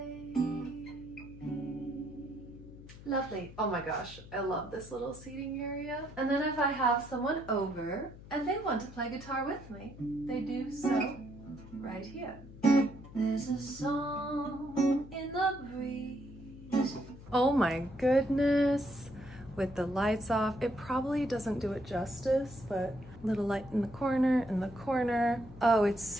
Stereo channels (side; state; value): left; noise; hum, 17 dB below the sound